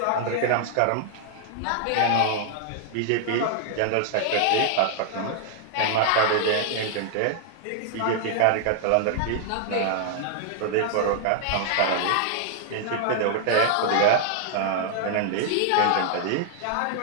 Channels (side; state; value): both; different; correlation 0.00